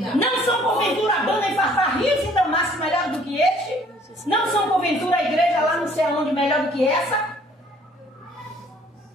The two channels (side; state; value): both; normal; correlation 0.58